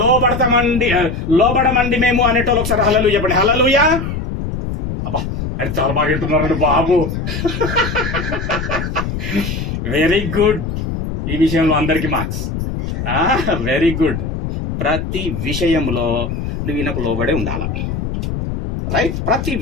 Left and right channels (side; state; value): left; noise; rumble, 4 dB below the sound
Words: లోబడమండి మేము అనేటోళ్ళు ఒకసారి హల్లెలూయా చెప్పండి. హల్లెలూయా. అబ్బా అది చాలా బాగా వింటున్నారండి బాబు. Very good. ఈ విషయంలో అందరికి మార్క్స్. Very good. ప్రతి విషయంలో నువ్వు ఈయనకు లోబడే ఉండాల. రైట్. ప్రతి